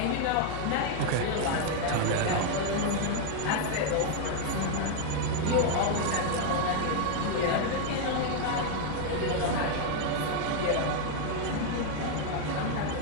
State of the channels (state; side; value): different; both; correlation 0.00